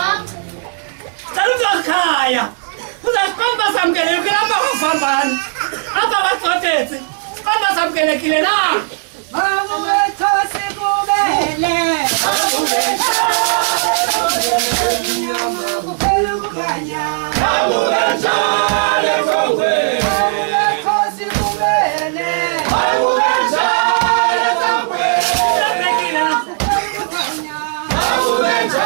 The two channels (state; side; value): silent; left; 64 dB below the other